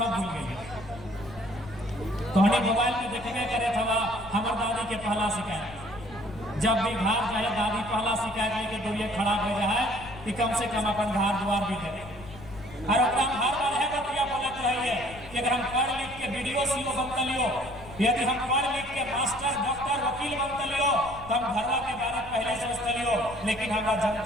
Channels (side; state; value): left; noise; rumble, 17 dB below the sound